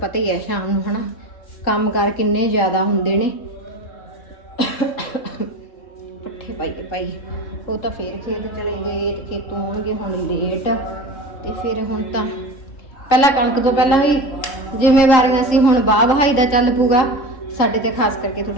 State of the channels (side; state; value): right; late; 3.7 ms